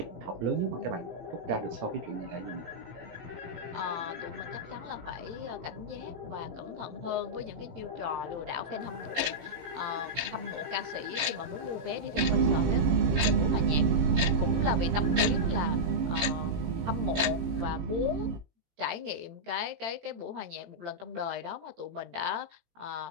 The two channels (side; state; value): left; late; 18 ms